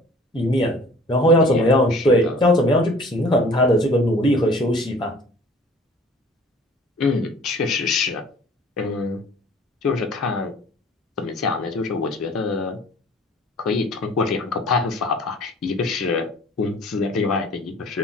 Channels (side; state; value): both; normal; correlation 0.49